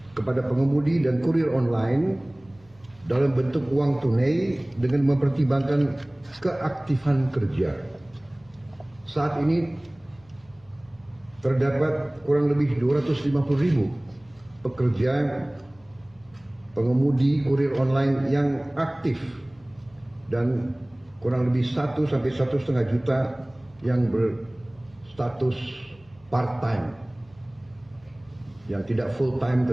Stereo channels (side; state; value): left; noise; hum, 29 dB below the sound